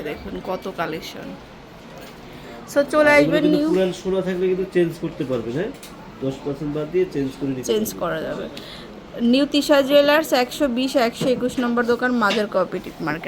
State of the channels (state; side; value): identical; both; correlation 1.00